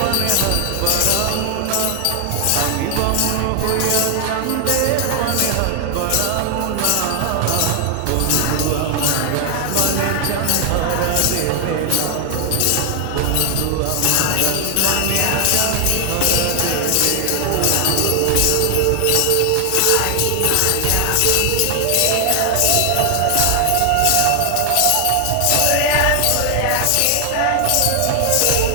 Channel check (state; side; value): different; both; correlation 0.00